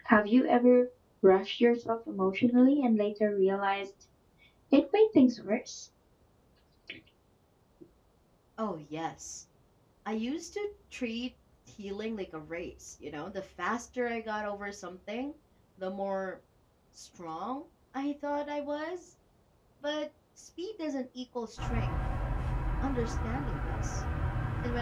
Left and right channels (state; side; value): identical; both; correlation 1.00